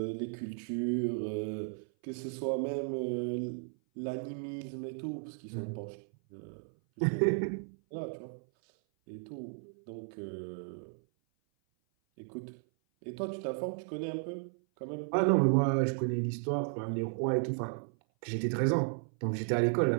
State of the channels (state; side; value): silent; left; 55 dB below the other